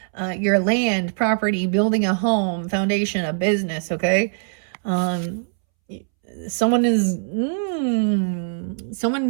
your land, property, building a home, foundation, a business, okay? Someone is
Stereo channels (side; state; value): left; silent; 64 dB below the other